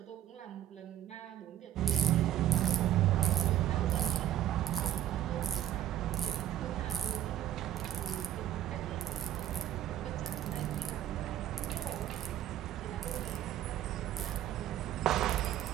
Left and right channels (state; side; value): quieter; left; 11.7 dB